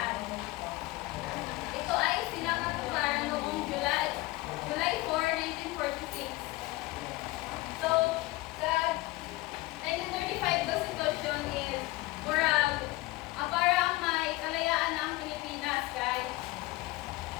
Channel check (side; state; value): right; quieter; 20.5 dB